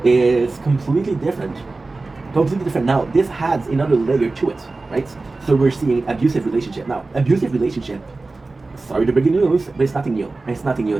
is completely different. Completely different. Now, this adds another layer to it, right? So we're seeing abusive relationship. Now, abusive relationship, sorry to break the news, but it's nothing new. It's nothing new.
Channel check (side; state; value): left; quieter; 3.5 dB